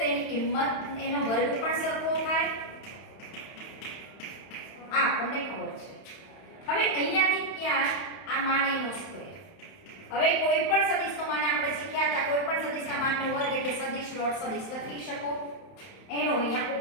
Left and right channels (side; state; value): right; late; 31 ms